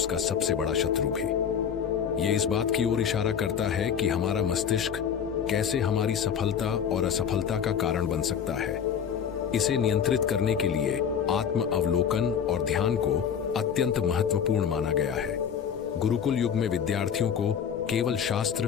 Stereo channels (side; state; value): right; quieter; 7.8 dB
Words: सबसे बड़ा शत्रु भी। ये इस बात की ओर इशारा करता है कि हमारा मस्तिष्क कैसे हमारी सफलता और असफलता का कारण बन सकता है। इसे नियंत्रित करने के लिए आत्म अवलोकन और ध्यान को अत्यंत महत्वपूर्ण माना गया है। गुरुकुल युग में विद्यार्थियों को केवल शास्त्र